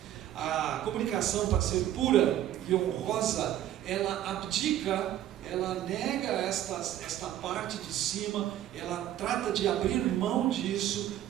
A comunicação, para ser pura e honrosa, ela abdica, ela nega esta parte de cima, ela trata de abrir mão disso,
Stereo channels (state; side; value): quieter; left; 12.2 dB